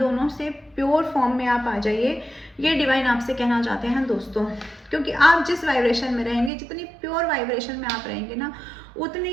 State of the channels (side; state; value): left; drops out; at 6.5 s